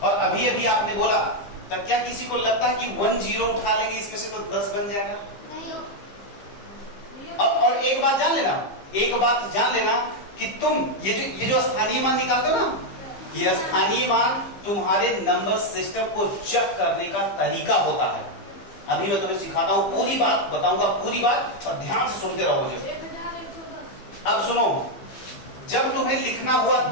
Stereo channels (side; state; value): right; late; 15 ms